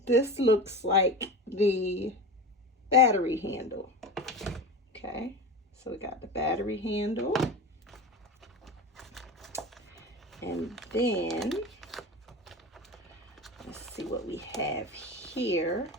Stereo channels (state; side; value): normal; both; correlation 0.29